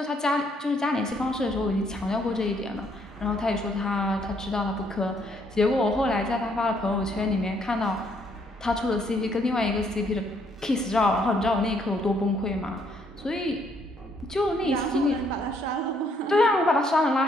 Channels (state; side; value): normal; both; correlation 0.69